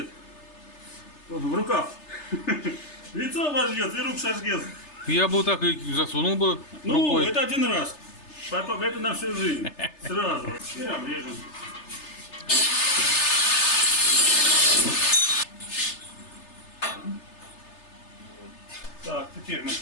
В рукав. Лицо обожгет и рук сожгет. Я бы так и засунул бы Ну, рукой. это один раз. Потом это на всю жизнь. Сразу. И обрежем. Так, теперь мы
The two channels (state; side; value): late; right; 3.3 ms